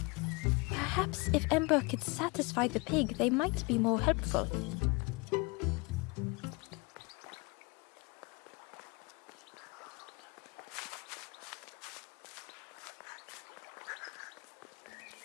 Perhaps if Ember could satisfy the pig, they might be more helpful.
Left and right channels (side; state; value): right; quieter; 28.1 dB